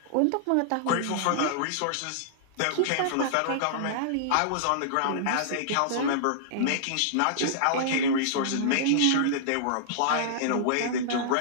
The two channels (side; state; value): both; different; correlation -0.02